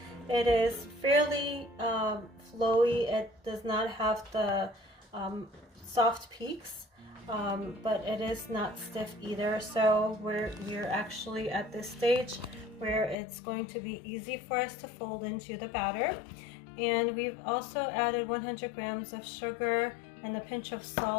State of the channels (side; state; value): right; drops out; at 13.2 s